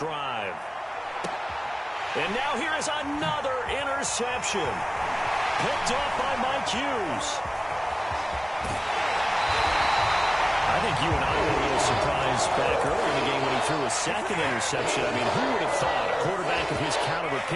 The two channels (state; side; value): identical; both; correlation 1.00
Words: And now here is another interception. Picked off by Mike Hughes. I think you and I were a little surprised back earlier in the game when he threw a 2nd interception. I mean, who would have thought a quarterback of his caliber